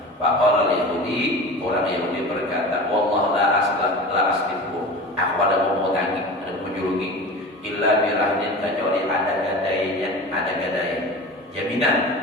Faqala al-Yahudi, orang Yahudi berkata, wallah la aslifu, aku ada mau hutangi, ada menjurungi, illa birahdin kecuali ada gadai jaminan.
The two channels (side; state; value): both; normal; correlation 0.33